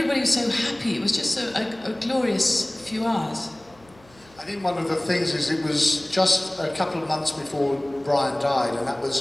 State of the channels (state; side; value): noise; left; hum, 28 dB below the sound